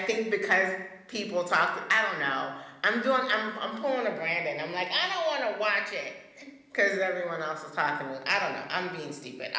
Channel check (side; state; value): both; identical; correlation 1.00